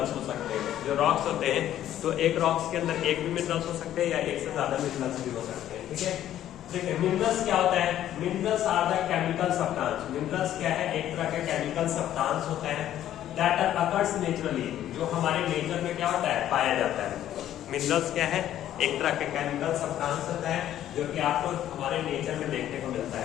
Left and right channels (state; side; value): quieter; right; 11.9 dB